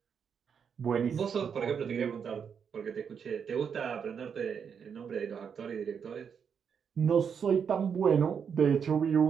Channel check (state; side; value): quieter; left; 7.0 dB